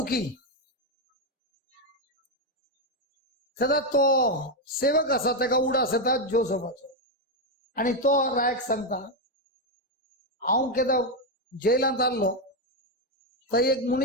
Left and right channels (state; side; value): normal; both; correlation 0.04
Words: तेदा तो सेवक असा तेका उडास येता जोसेफाचो आणि तो रायक सांगता हांव केदा जेलांत आल्लो थंय एक